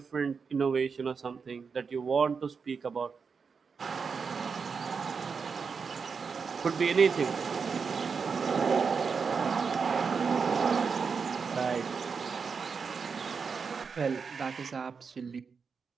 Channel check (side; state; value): left; quieter; 5.5 dB